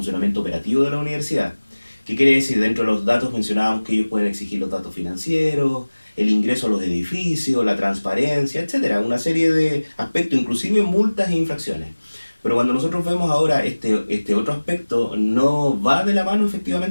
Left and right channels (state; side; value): inverted; both; correlation -1.00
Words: operativo de la universidad. ¿Qué quiere decir? Dentro de los datos mencionábamos que ellos pueden exigir los datos financieros, el ingreso a los edificios, la transparencia, etcétera, una serie de aspectos, inclusive multas e infracciones. Pero cuando nosotros vemos ahora este otro aspecto, no va de la mano